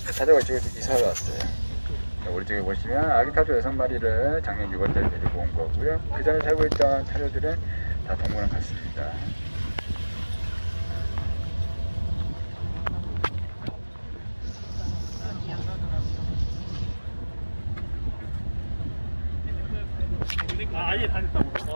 타조가 이쪽에 이사를 왔어요. 우리 쪽에 보시면 아기 타조 6마리를 작년 6월달에 데리고 온 거고요. 그 전에 살고 있던 타조들은 다 동물원 갔습니다. 아예 다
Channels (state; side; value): inverted; both; correlation -1.00